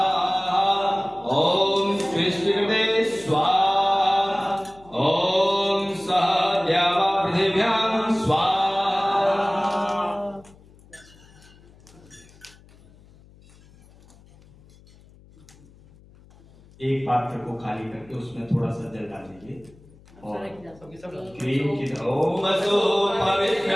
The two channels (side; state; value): left; noise; hum, 26 dB below the sound